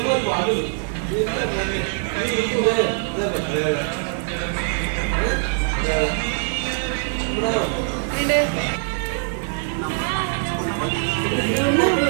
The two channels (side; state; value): left; silent; 60 dB below the other